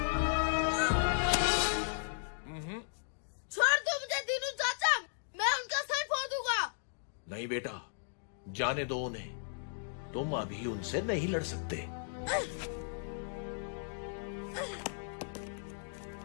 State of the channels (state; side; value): silent; right; digital silence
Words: छोड़ दो मुझे दीनू चाचा, मैं उनका सर फोड़ दूंगा। नहीं बेटा, जाने दो उन्हें। तुम अभी उनसे नहीं लड़ सकते।